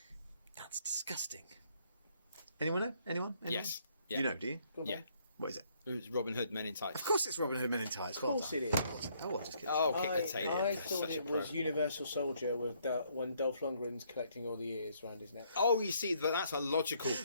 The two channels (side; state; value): both; inverted; correlation -0.68